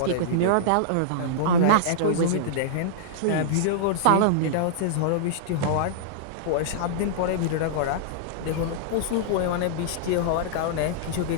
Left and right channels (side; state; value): both; different; correlation -0.02